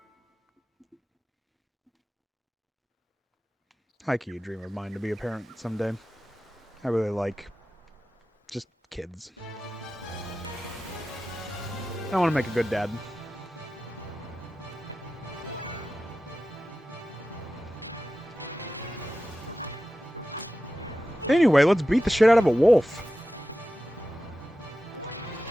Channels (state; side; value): normal; both; correlation 0.93